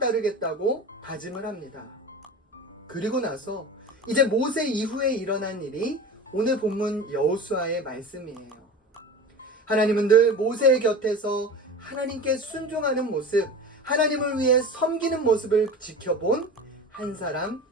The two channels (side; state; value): both; normal; correlation 0.33